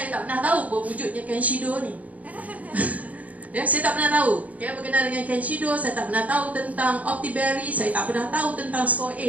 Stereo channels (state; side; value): late; left; 0.071 ms